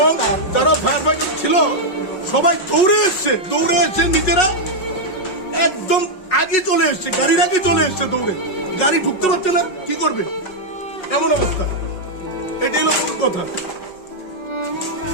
যারা ফায়ার ফাইটার ছিল সবাই দৌড়ে এসছে নিজেরা একদম আগে চলে এসছে গাড়ির আগে চলে এসছে দৌড়ে গাড়ি ঢুকতে পারছে না কি করবে এমন অবস্থা এটাই হলো মূল কথা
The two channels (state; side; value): late; right; 5.4 ms